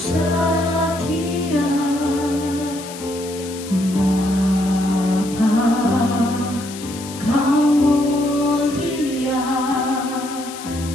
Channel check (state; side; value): noise; left; hiss, 14 dB below the sound